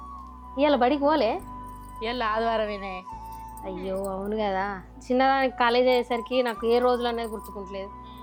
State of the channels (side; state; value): both; identical; correlation 1.00